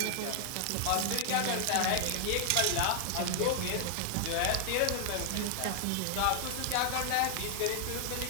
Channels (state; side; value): different; both; correlation 0.00